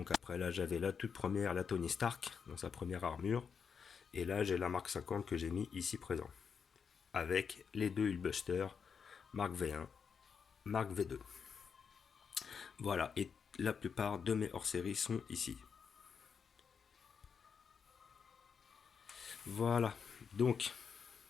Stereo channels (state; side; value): quieter; right; 6.3 dB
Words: après là j'avais la toute première, la Tony Stark, dans sa première armure. Et là j'ai la Mark 50 que j'ai mis ici présent. Avec les 2 Hulkbuster, Mark V1, Mark V2. Voilà, et la plupart de mes hors-série sont ici. Voilà, donc,